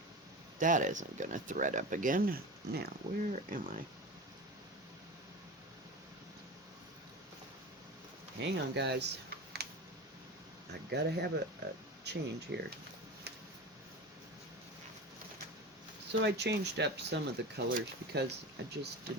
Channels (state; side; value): normal; both; correlation 0.29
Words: That isn't gonna thread up again. Now, where am I? Hang on, guys. I gotta have a change here. So I changed up some of the colors because I just